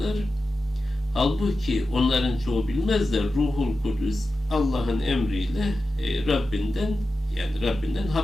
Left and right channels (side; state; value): both; normal; correlation 0.92